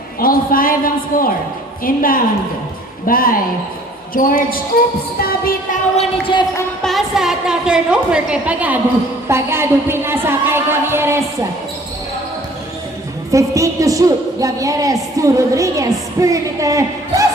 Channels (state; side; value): normal; both; correlation 0.53